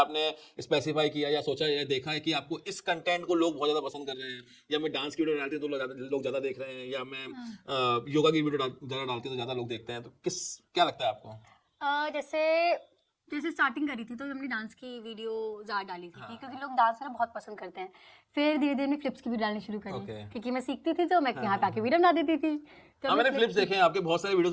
स्पेसिफाई किया या सोचा या देखा है कि आपको इस कंटेंट को लोग बहुत ज्यादा पसंद कर रहे हैं, या मैं डांस की वीडियो डालती हूँ तो लोग ज्यादा देख रहे हैं, या मैं योगा की वीडियो ज्यादा डालती हूँ तो ज्यादा लोग देखते हैं? तो क्या लगता है आपको? जैसे स्टार्टिंग करी थी तो हमने डांस की वीडियो ज्यादा डाली थी, क्योंकि लोग डांस करना बहुत पसंद करते हैं। फिर धीरे धीरे फ्लिप्स की वीडियो डालनी शुरू करी, क्योंकि मैं सीखती थी तो मैं यहाँ पे आके वीडियो बना देती थी। तो मैंने फ्लिप्स देखे हैं आपके, बहुत सारे वीडियोस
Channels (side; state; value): both; identical; correlation 1.00